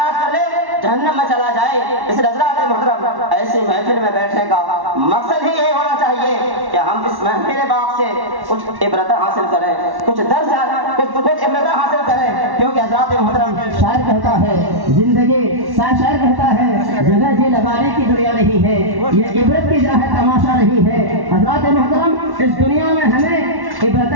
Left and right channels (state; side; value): late; left; 1.1 ms